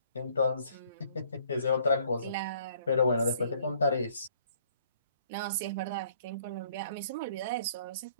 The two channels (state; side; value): inverted; both; correlation -0.60